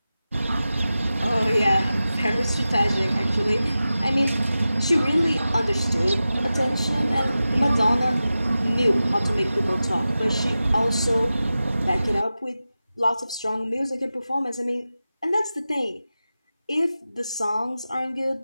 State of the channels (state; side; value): inverted; both; correlation -0.94